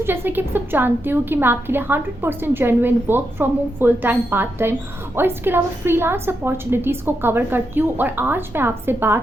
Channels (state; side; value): normal; both; correlation 0.84